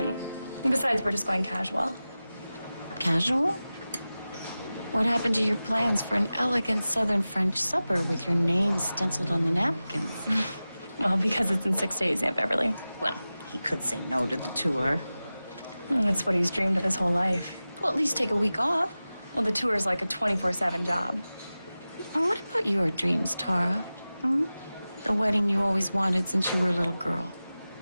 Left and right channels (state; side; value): inverted; both; correlation -0.96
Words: Besides, we're just going casual. Casual? What happened to your plans for an elegant southern French supper with your name stenciled on the napkins? Well, because it's in 6 days, Aunt Beverly. Well, he could say no to the tour. That's what he's dreamed of his whole life. Well, at least take a week off. Well, the tour's like a 24/7 job. And what about your dreams, Tara? Hmm? The wedding you always wanted since you were a little girl.